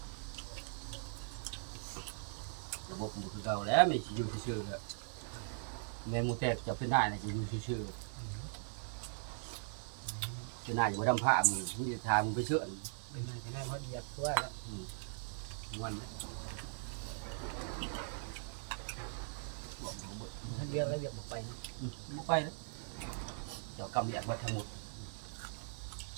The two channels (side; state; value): left; silent; 51 dB below the other